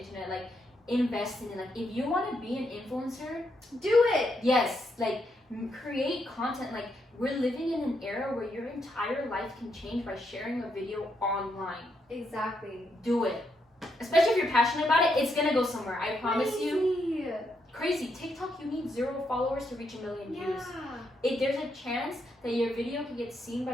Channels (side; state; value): both; normal; correlation 0.79